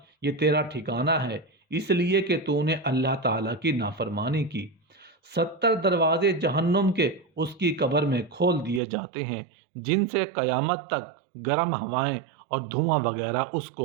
یہ تیرا ٹھکانہ ہے اس لیے کہ تو نے اللہ تعالیٰ کی نافرمانی کی۔ 70 دروازے جہنم کے اس کی قبر میں کھول دیے جاتے ہیں، جن سے قیامت تک گرم ہوائیں اور دھواں وغیرہ اس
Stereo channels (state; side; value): drops out; left; at 8.8 s